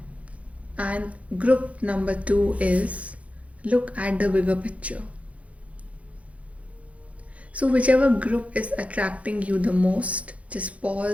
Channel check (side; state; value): left; late; 0.065 ms